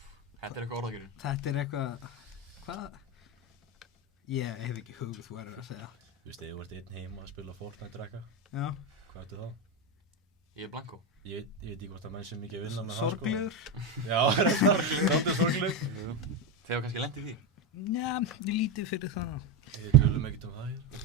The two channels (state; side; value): normal; both; correlation 0.12